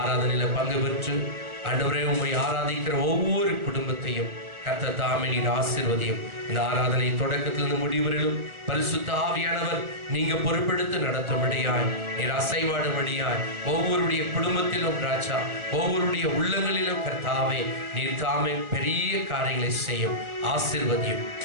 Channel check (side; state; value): left; late; 1.4 ms